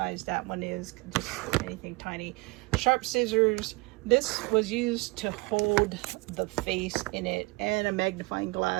that one is, just anything tiny. Sharp scissors. This was used to hold the face in it, and a magnifying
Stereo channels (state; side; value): quieter; left; 25.4 dB